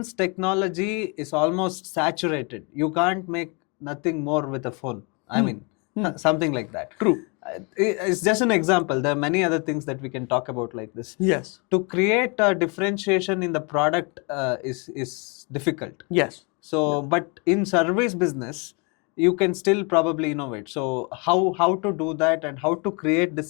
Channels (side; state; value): right; quieter; 32.4 dB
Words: technology is almost saturated. You can't make nothing more with a phone. I mean, something like that. True. It's just an example. There are many other things that we can talk about like this. Yes. To create a differentiation in the product is difficult. Yes. So, but in service business, you can still probably innovate. So, how to do that and how to create